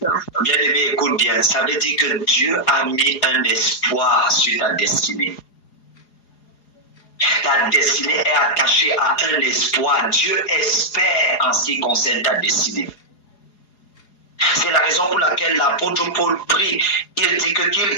Bien-aimé, écoute bien. Ça veut dire que Dieu a mis un espoir sur ta destinée. Ta destinée est attachée à un espoir. Dieu espère en ce qui concerne ta destinée. C'est la raison pour laquelle l'apôtre Paul prie. Il dit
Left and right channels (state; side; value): late; right; 4.8 ms